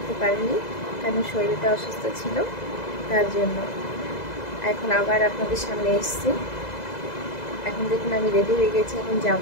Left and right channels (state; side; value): late; right; 2.0 ms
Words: পারিনি, কারণ শরীরটা অসুস্থ ছিল, তার জন্য এখন আবার আপনাদের সামনে এসেছি। এখন দেখুন আমি রেডি হয়ে গেছি, এখন